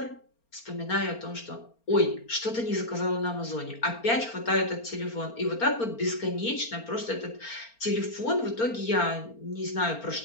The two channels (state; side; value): late; right; 4.4 ms